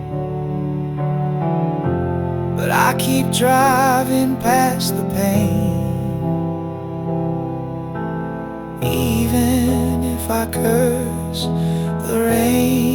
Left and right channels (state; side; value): identical; both; correlation 1.00